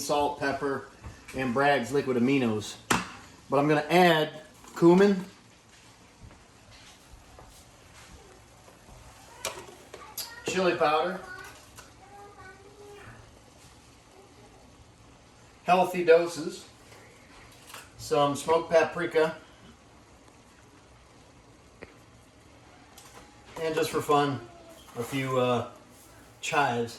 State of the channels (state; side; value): identical; both; correlation 1.00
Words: pepper, and Bragg's liquid aminos. But I'm going to add cumin, chili powder, healthy doses, some smoked paprika, and just for fun, a few